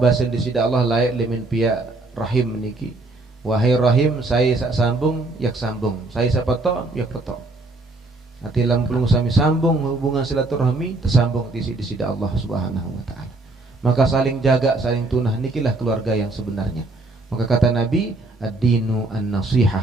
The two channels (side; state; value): left; quieter; 3.1 dB